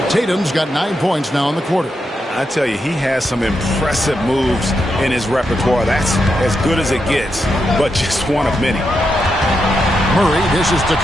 Tatum's got 9 points now in the quarter. I tell you, he has some impressive moves in his repertoire. That's as good as it gets, but just one of many. Murray dishes to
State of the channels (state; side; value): normal; both; correlation 0.84